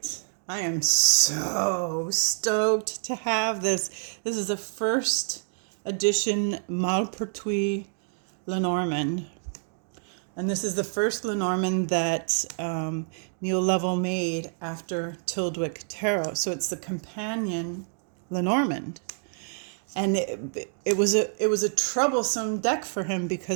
I am so stoked to have this. This is a first edition Malpertuis Lenormand. And this is the first Lenormand that Neil Lovell made after Tildwick Tarot. So it's the companion Lenormand. And it was a troublesome deck for him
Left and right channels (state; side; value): silent; left; digital silence